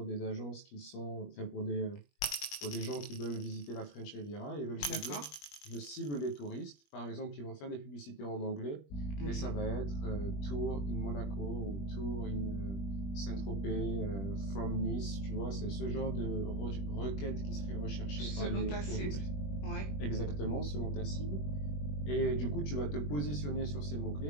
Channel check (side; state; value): right; late; 21 ms